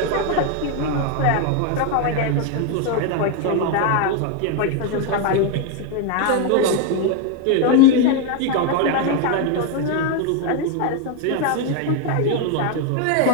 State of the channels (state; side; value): different; both; correlation 0.01